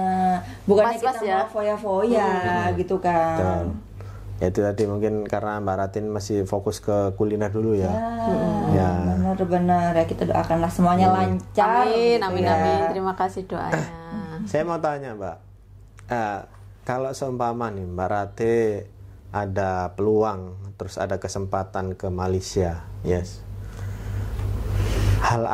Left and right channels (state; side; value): identical; both; correlation 1.00